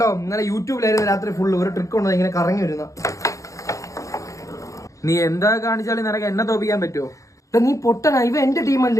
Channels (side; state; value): right; late; 0.15 ms